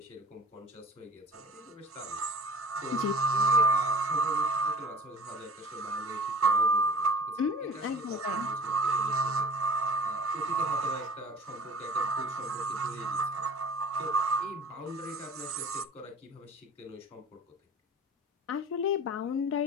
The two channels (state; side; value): normal; both; correlation 0.43